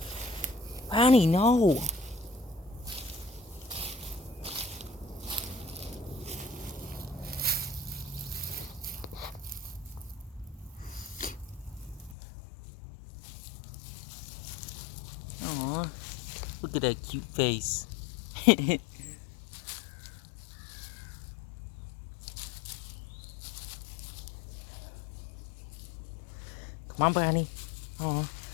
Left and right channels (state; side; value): drops out; right; at 12.2 s